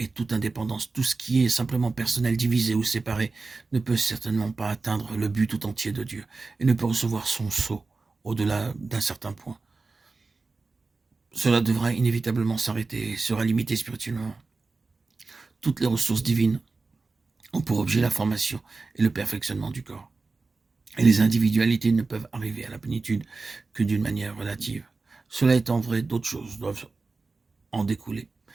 toute indépendance, tout ce qui est simplement personnel, divisé ou séparé, ne peut certainement pas atteindre le but tout entier de Dieu et ne peut recevoir son sceau au-delà d'un certain point. Cela devra inévitablement s'arrêter et sera limité spirituellement. Toutes les ressources divines ont pour objet la formation et le perfectionnement du corps. Et les individualités ne peuvent arriver à la plénitude que d'une manière relative. Cela étant vrai, d'autres choses doivent en découler.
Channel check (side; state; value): left; quieter; 3.9 dB